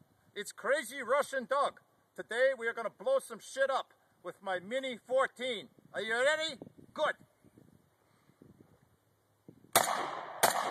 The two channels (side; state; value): both; identical; correlation 1.00